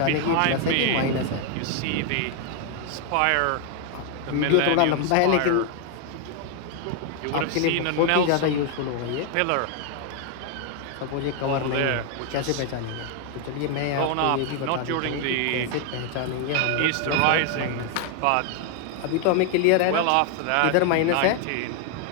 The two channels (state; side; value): different; both; correlation 0.01